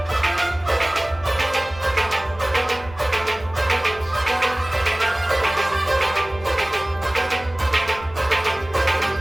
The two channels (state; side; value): noise; left; rumble, 18 dB below the sound